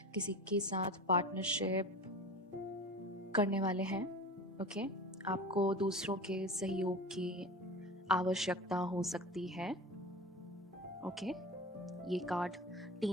के साथ पार्टनरशिप करने वाले हैं. ओके, आपको दूसरों के सहयोग की आवश्यकता हो सकती है. ओके, ये कार्ड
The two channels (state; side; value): normal; both; correlation 0.33